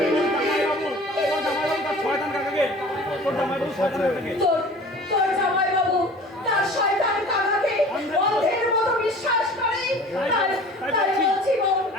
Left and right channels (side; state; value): both; normal; correlation 0.44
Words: তোর জামাইবাবু তার শয়তান কাকাকে অন্ধের মতো বিশ্বাস করে। তাই বলছি বোন,